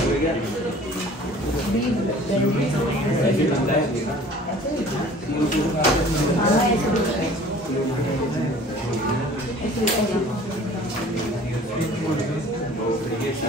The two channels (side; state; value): both; normal; correlation 0.48